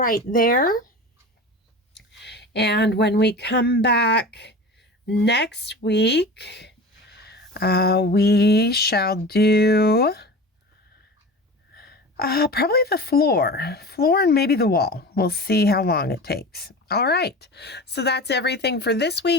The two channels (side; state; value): both; normal; correlation 0.33